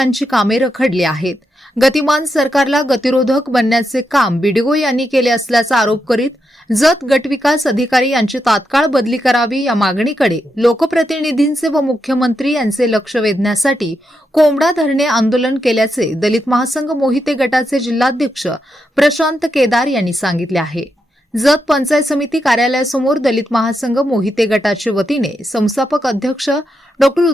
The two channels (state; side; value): normal; both; correlation 0.84